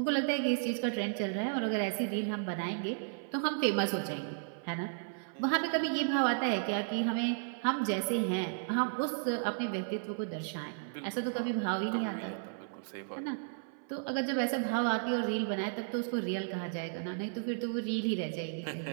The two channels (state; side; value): silent; left; 55 dB below the other